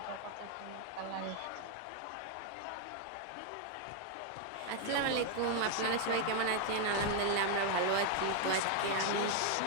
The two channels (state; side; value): different; both; correlation 0.00